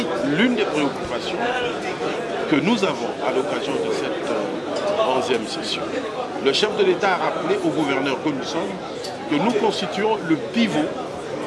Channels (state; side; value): identical; both; correlation 1.00